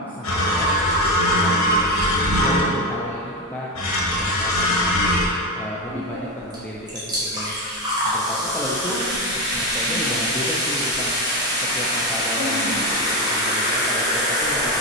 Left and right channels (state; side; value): normal; both; correlation 0.13